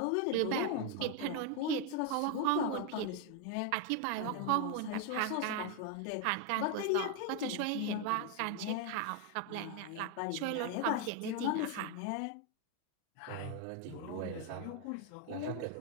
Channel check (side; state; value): both; different; correlation 0.01